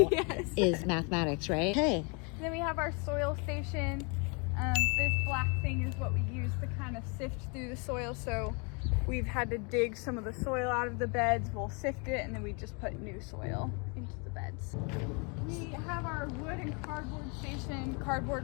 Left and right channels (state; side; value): quieter; right; 33.7 dB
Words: is mathematics, right? Okay. Then we have our soil station. This black thing is what we use to kind of sift through the soil. So we've had to dig some of the soil out of the beds. We'll sift it, and then we just put new soil into the beds. We have our wood and cardboard station.